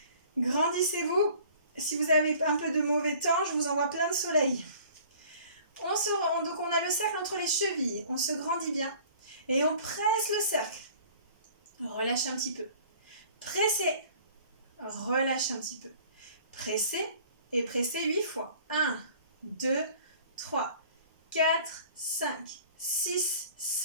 Grandissez-vous. Si vous avez un peu de mauvais temps, je vous envoie plein de soleil. Donc on a le cercle entre les chevilles. On se grandit bien. Et on presse le cercle. Relâchez un petit peu. Pressez. Relâchez un petit peu. Pressez et pressez 8 fois. 1, 2, 3, 4, 5, 6,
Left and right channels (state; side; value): inverted; both; correlation -0.50